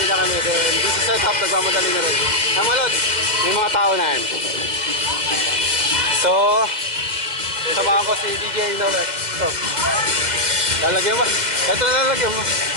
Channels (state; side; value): late; left; 2.0 ms